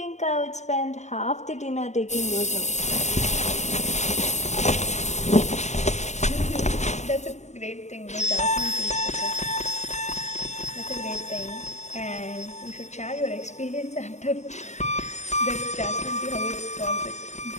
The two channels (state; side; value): late; right; 0.33 ms